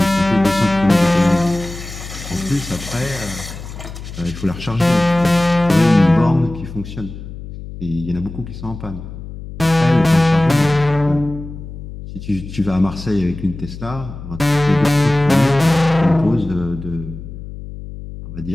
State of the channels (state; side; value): noise; left; hum, 12 dB below the sound